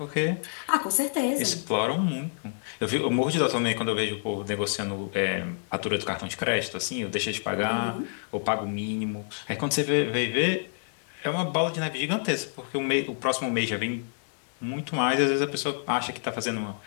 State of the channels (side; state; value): right; silent; digital silence